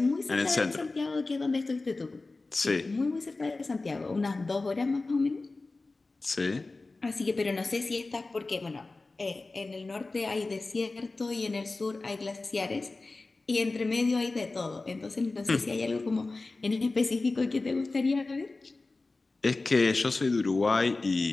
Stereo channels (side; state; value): right; quieter; 3.4 dB